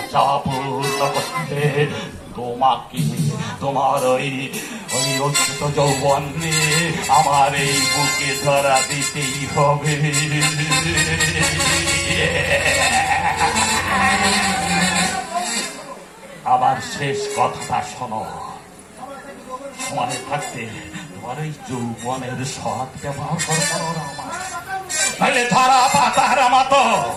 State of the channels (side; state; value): both; identical; correlation 1.00